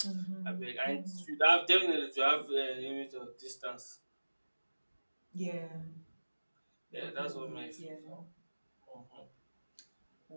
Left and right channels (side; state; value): both; inverted; correlation -1.00